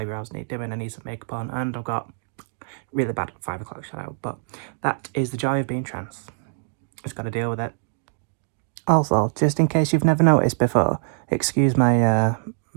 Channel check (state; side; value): silent; left; digital silence